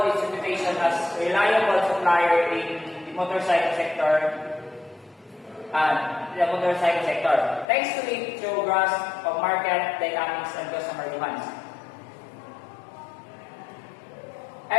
its reputation as a reliable supplier in the motorcycle sector thanks to its true grasp of market dynamics and customer demands.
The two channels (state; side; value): drops out; right; at 7.7 s